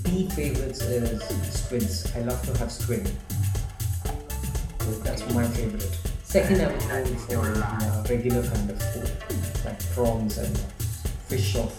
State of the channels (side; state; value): both; identical; correlation 1.00